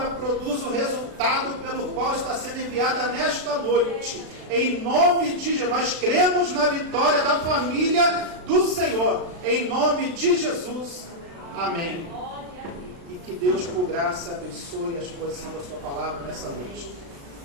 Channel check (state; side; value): late; left; 36 ms